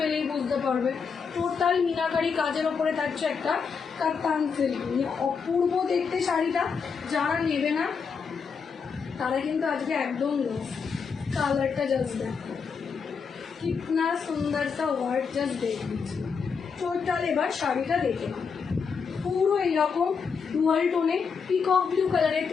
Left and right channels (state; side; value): quieter; right; 5.8 dB